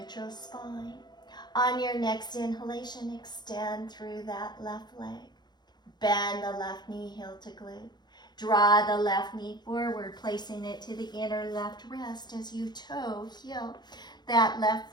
spine. On your next inhalation, extend through that left leg. Bend the left knee, heel to glute. Draw the left knee forward, placing it to the inner left wrist as you toe, heel that left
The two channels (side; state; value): right; late; 0.21 ms